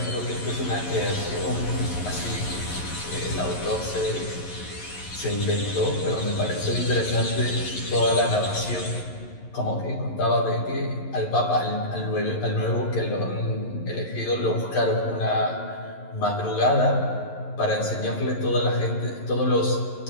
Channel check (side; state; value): right; late; 11 ms